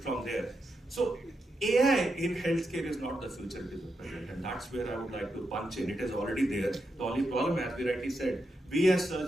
from there. So AI in healthcare is not the future, it is the present, and that's where I would like to punch in. It is already there. The only problem, as we rightly said, we as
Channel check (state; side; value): normal; both; correlation 0.85